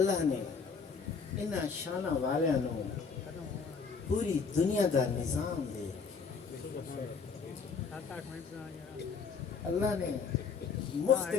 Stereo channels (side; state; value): right; quieter; 5.4 dB